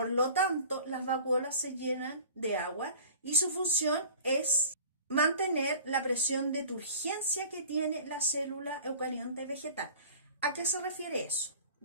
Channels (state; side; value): inverted; both; correlation -0.43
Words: lo tanto, las vacuolas se llenan de agua y su función es mantener la presión de turgencia que tiene la célula eucarionte vegetal. ¿A qué se refiere eso?